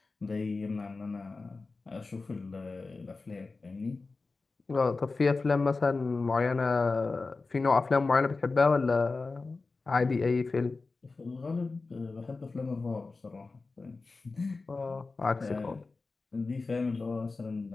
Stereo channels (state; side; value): quieter; right; 3.8 dB